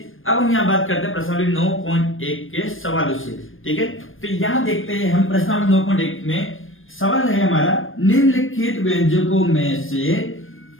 अब हम यहाँ बात करते हैं प्रश्नावली 9.1 के सवालों से। ठीक है, तो यहाँ देखते हैं हम प्रश्नावली 9.1 में सवाल है हमारा, निम्नलिखित व्यंजकों में से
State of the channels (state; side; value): late; right; 0.59 ms